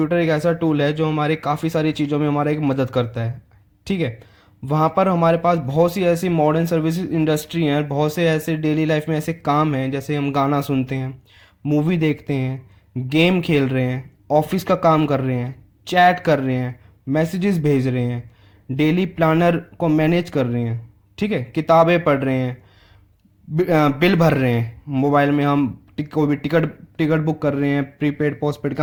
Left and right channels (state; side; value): identical; both; correlation 1.00